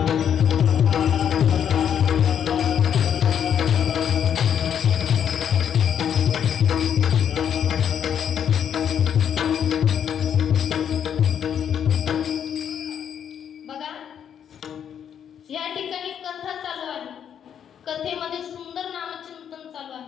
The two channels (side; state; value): right; quieter; 8.7 dB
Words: बघा या ठिकाणी कथा चालू आहे. कथेमध्ये सुंदर नामचिंतन चालू